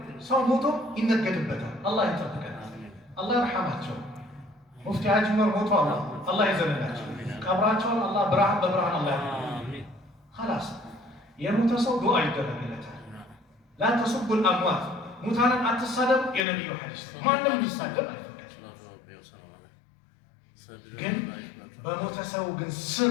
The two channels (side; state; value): right; drops out; at 16.4 s